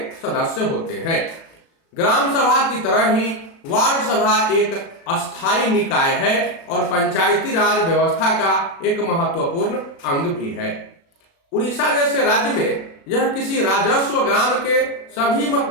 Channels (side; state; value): right; late; 36 ms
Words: सदस्य होते हैं। ग्राम सभा की तरह ही वार्ड सभा एक अस्थायी निकाय है और पंचायती राज व्यवस्था का एक महत्वपूर्ण अंग भी है। उड़ीसा जैसे राज्य में यह किसी राजस्व ग्राम के सभी